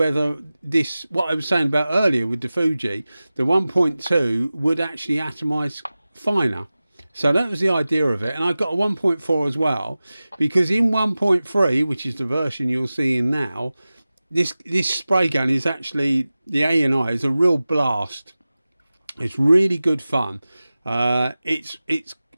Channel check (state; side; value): inverted; both; correlation -0.96